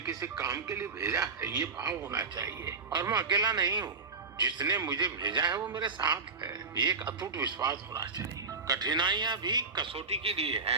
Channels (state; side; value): quieter; left; 4.4 dB